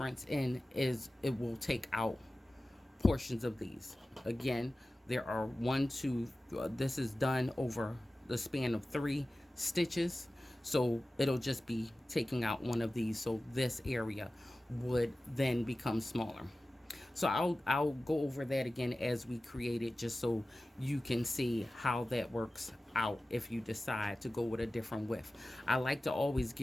in is it will take out portions of these. Again, there are 1, 2, this is done over the span of 3 stitches. So it'll just be taking out one of these. So this area would then become smaller. So I'll go over that again as we create it, just so you can see how that works out if you decide to go with a different width. I like to always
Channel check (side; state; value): both; normal; correlation 0.95